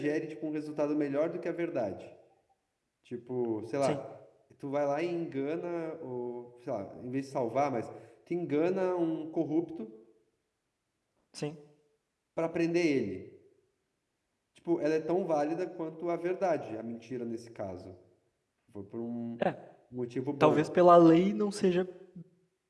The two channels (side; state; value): both; identical; correlation 1.00